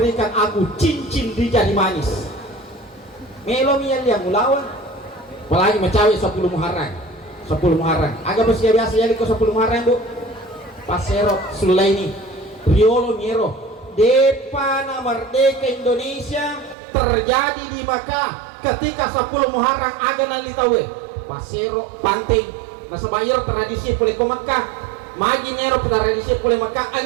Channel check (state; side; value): drops out; left; at 16.8 s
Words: aku cincin di jari manis. Melo mian yang ulawan, apalagi mencawi 10 Muharram. Agak bersih biasa ya liko 10 Muharram bu. Pasero Sulaini Riolo Miero Depana Merdeka Indonesia terjadi di Makkah ketika 10 Muharram aga nalitawe Pasero Panting nasabayar tradisi pulih ke Makkah magi Nero tradisi pulih Makkah